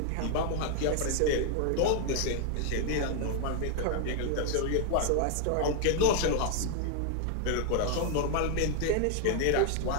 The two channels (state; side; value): different; both; correlation 0.00